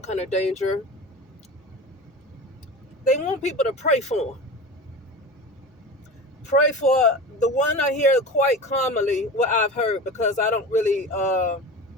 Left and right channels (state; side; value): normal; both; correlation 0.31